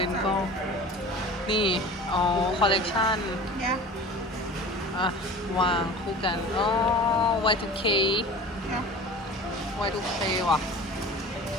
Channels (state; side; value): normal; both; correlation 0.39